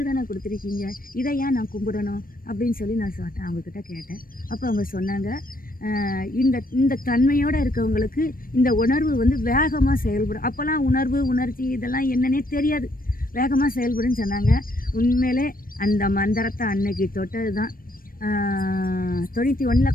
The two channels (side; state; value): right; late; 0.41 ms